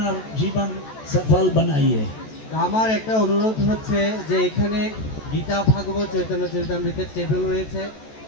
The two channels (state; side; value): late; right; 14 ms